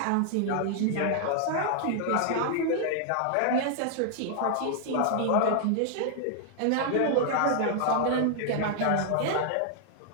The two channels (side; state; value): both; different; correlation 0.00